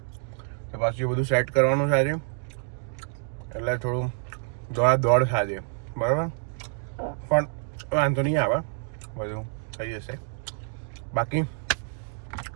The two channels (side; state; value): left; silent; 60 dB below the other